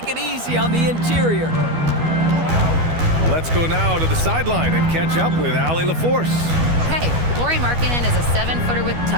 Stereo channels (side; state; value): left; late; 12 ms